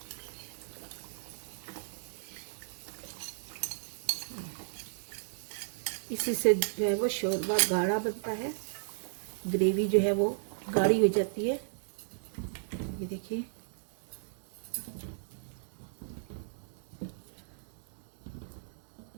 इसी से जो है वो शोरबा गाढ़ा बनता है, ग्रेवी जो है वो गाढ़ी हो जाती है। ये देखिए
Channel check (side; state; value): left; silent; digital silence